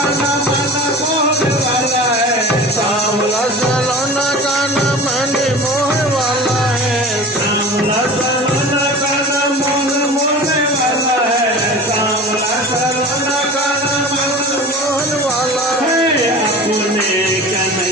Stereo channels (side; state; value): both; normal; correlation 0.36